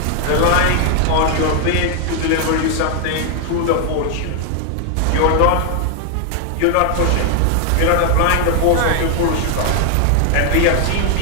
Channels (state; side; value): different; both; correlation 0.00